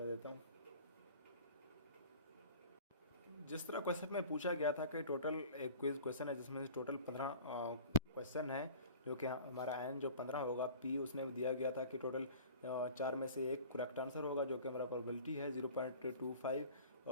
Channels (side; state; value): both; inverted; correlation -0.43